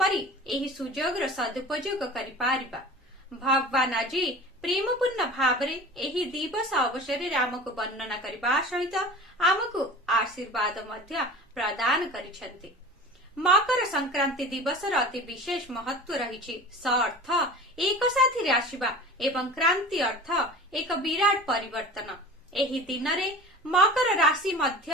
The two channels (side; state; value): both; normal; correlation 0.37